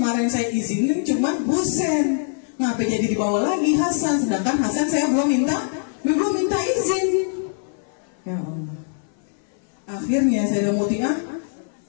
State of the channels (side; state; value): right; silent; 59 dB below the other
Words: saya izinin cuma Hussein. Ngapa jadi dibawa lagi Hasan? Sedangkan Hasan saya belum minta izin. Ya Allah. Akhirnya Sayyidah Muti'ah